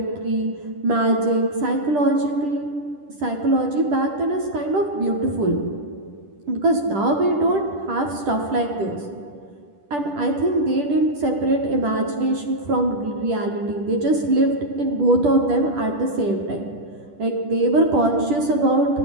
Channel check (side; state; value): left; late; 10 ms